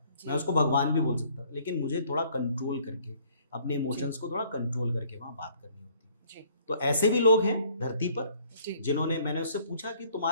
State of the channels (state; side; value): inverted; both; correlation -0.60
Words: जी मैं उसको भगवान भी बोल सकता था, लेकिन मुझे थोड़ा कंट्रोल करके, अपने इमोशंस को थोड़ा कंट्रोल करके वहाँ बात करनी होती है। जी तो ऐसे भी लोग हैं धरती पर जी जिन्होंने, मैंने उससे पूछा कि